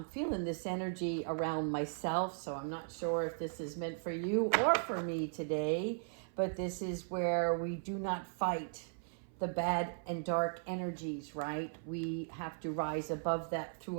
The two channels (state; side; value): silent; left; 53 dB below the other